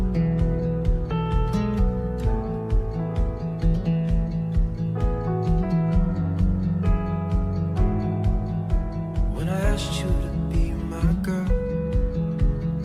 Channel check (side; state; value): both; identical; correlation 1.00